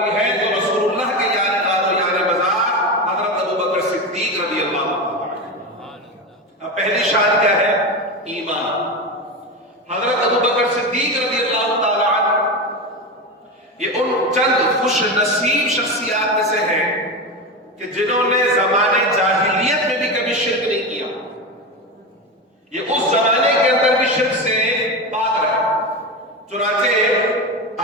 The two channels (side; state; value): both; normal; correlation 0.19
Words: ہے تو رسول اللہ کے یعنی غار و یعنی بازار حضرت ابوبکر صدیق رضی اللہ تعالی عنہ۔ اب پہلی شان کیا ہے؟ ایمان۔ حضرت ابوبکر صدیق رضی اللہ تعالی عنہ یہ ان چند خوش نصیب شخصیات میں سے ہیں کہ جنہوں نے زمانے جاہلیت میں بھی کبھی شرک نہیں کیا۔ یہ اس زمانے کے اندر بھی شرک سے پاک رہے۔ چنانچہ